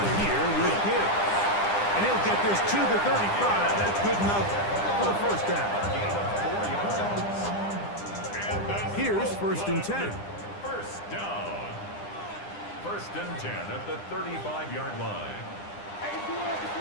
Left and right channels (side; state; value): right; late; 9.9 ms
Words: here with Gibbs. And he'll get this to the 35. That's good enough for the first down. Gain of 4 yards. And that's Here's first and 10. First down. First and 10 at the 35-yard line.